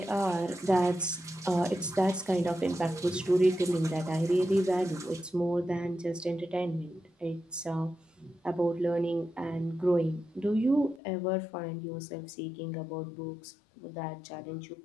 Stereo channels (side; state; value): right; drops out; at 11.0 s